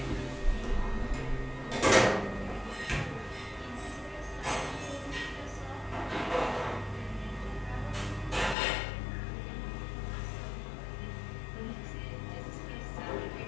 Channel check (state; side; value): drops out; right; at 8.6 s